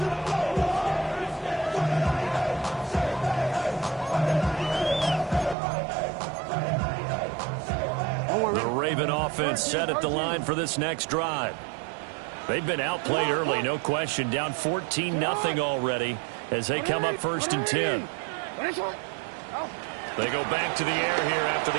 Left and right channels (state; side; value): drops out; left; at 5.6 s